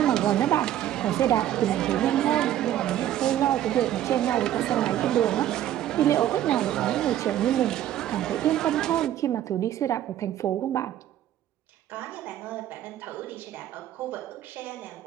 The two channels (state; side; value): quieter; left; 12.1 dB